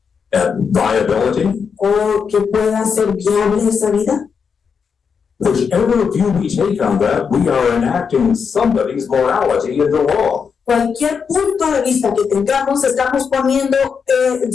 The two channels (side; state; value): right; quieter; 6.2 dB